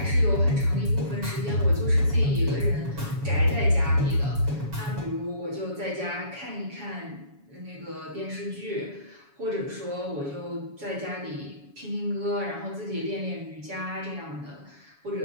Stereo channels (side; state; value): left; late; 7.1 ms